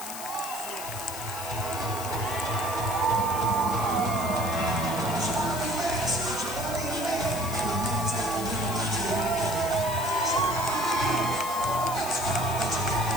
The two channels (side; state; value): left; noise; hiss, 9 dB below the sound